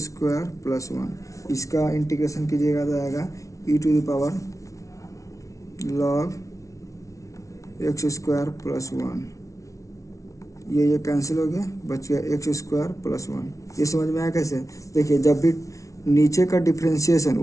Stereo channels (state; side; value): late; right; 0.16 ms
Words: स्क्वायर प्लस 1। इसका इंटीग्रेशन कीजिएगा तो आएगा ई to power log X square plus 1। ये कैंसिल हो गया, बच गया एक्स स्क्वायर प्लस 1। ये समझ में आया कैसे? देखिए जब भी नीचे का डिफ्रेंशिएशन